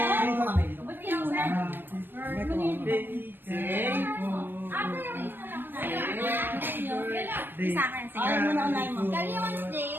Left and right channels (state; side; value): late; left; 0.096 ms